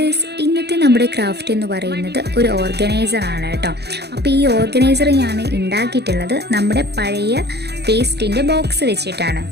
ഇന്നത്തെ നമ്മുടെ craft എന്ന് പറയുന്നത് ഒരു ഓർഗനൈസർ ആണ് കേട്ടോ. അപ്പോൾ ഈ ഓർഗനൈസർ ഞാൻ ഉണ്ടാക്കിയിട്ടുള്ളത് നമ്മുടെ പഴയ പേസ്റ്റിൻ്റെ ബോക്സ് വെച്ചിട്ടാണ്.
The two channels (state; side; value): late; left; 0.48 ms